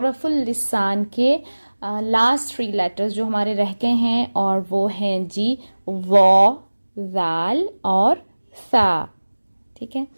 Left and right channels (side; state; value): both; inverted; correlation -1.00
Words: लिसान के लास्ट 3 लेटर्स जो हमारे रह गए हैं, और वो हैं जी वॉ, ज़ाल और सा। ठीक है,